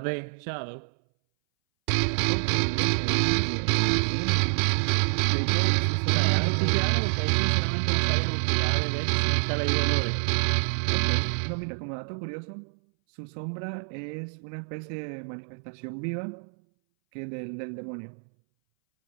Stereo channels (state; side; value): silent; left; 61 dB below the other